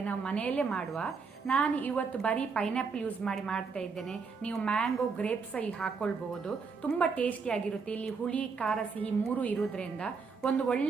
ನಾವು ಮನೆಯಲ್ಲೇ ಮಾಡುವ. ನಾನು ಇವತ್ತು ಬರೀ ಪೈನಾಪಲ್ ಯೂಸ್ ಮಾಡಿ ಮಾಡ್ತಾ ಇದ್ದೇನೆ. ನೀವು ಮ್ಯಾಂಗೋ ಗ್ರೇಪ್ಸ್ ಹಾಕೊಳ್ಬಹುದು. ತುಂಬ ಟೇಸ್ಟಿಯಾಗಿರುತ್ತೆ. ಇಲ್ಲಿ ಹುಳಿ ಖಾರ ಸಿಹಿ ಮೂರು ಇರೋದ್ರಿಂದ ಒಂದು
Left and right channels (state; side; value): quieter; left; 5.1 dB